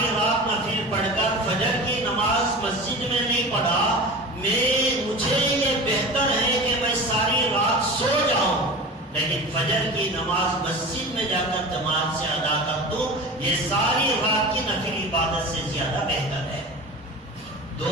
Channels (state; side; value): normal; both; correlation 0.33